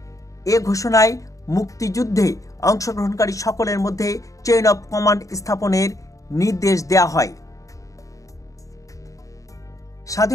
এ ঘোষণায় মুক্তিযুদ্ধে অংশগ্রহণকারী সকলের মধ্যে চেইন অফ কমান্ড স্থাপনের নির্দেশ দেওয়া হয়।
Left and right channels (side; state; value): right; late; 0.16 ms